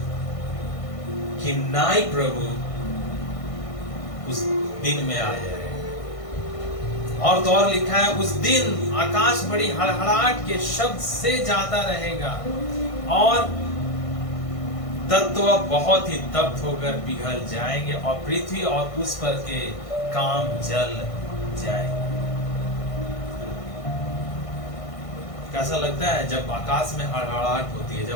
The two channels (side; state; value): right; late; 1.6 ms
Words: की नाई प्रभु उस दिन में आ जाएगा। और तो और लिखा है उस दिन आकाश बड़ी हड़हड़ाहट के शब्द से जाता रहेगा, और तत्व बहुत ही तप्त होकर पिघल जाएंगे, और पृथ्वी और उस पर के काम जल जाएंगे। कैसा लगता है जब आकाश में हड़हड़ाहट होती है,